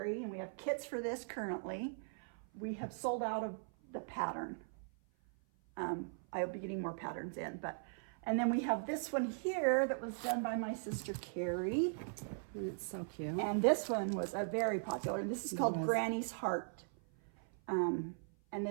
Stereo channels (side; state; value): left; silent; 52 dB below the other